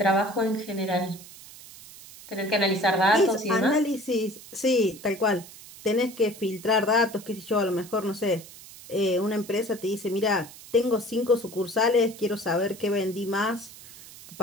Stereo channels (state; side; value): noise; right; hiss, 18 dB below the sound